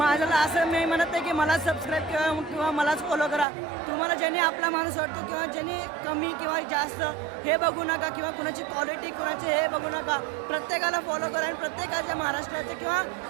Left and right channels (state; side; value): drops out; left; at 3.5 s